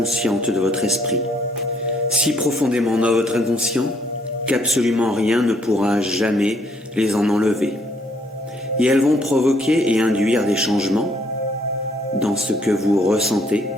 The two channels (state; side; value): normal; both; correlation 0.67